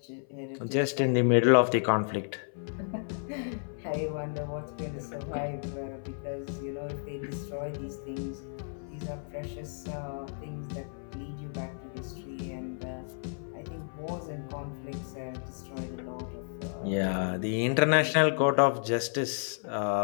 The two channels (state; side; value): silent; right; 57 dB below the other